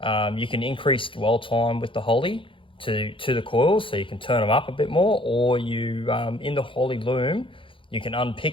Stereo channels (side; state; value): right; late; 0.25 ms